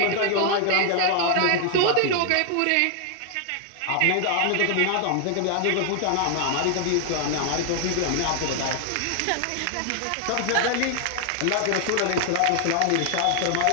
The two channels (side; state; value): both; different; correlation 0.00